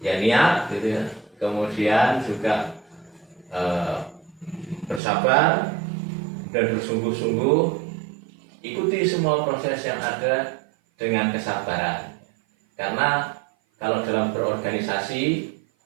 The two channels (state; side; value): drops out; left; at 5.0 s